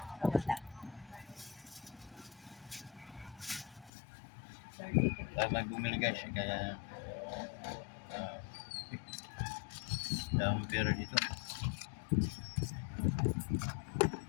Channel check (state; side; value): drops out; right; at 3.9 s